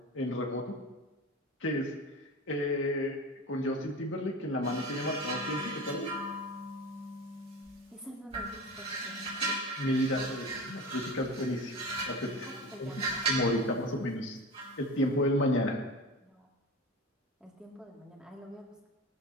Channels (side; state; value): both; normal; correlation 0.30